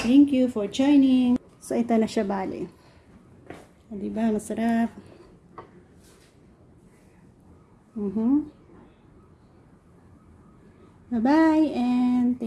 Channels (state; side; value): identical; both; correlation 1.00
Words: Thank you for joining. So, ito na siya bali. Diba? Masarap. Bye-bye and